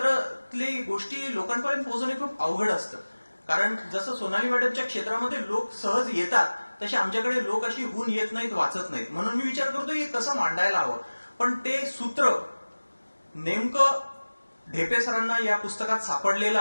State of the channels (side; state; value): both; inverted; correlation -1.00